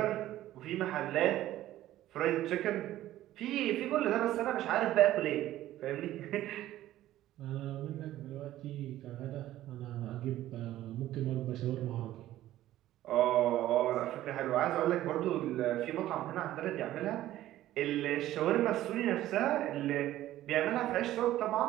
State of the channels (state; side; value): quieter; left; 14.2 dB